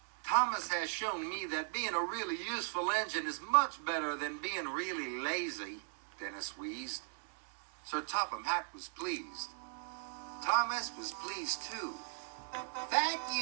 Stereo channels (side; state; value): left; silent; 52 dB below the other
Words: "Thomas has shown me that being a really useful engine is much better than being really lazy," Dennis wheezed. Sir Topham Hatt was pleased. Thomas was pleased too. "Thank